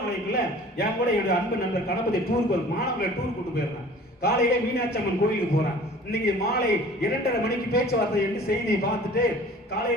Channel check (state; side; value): normal; both; correlation 0.47